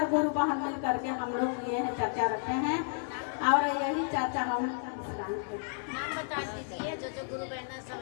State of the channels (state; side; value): silent; right; digital silence